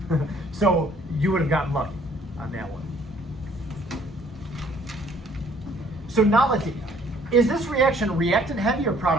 So you would have gotten lucky on that one. So now let's see. Is this reaction reactant heavy or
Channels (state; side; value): normal; both; correlation 0.60